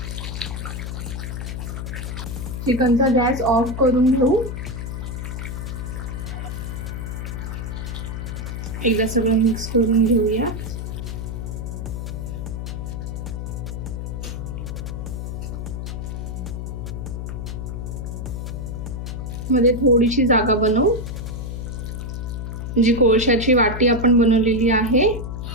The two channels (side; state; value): left; noise; hum, 5 dB below the sound